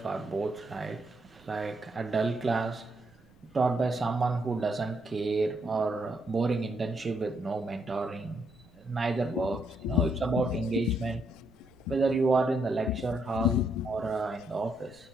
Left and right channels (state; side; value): noise; right; rumble, 28 dB below the sound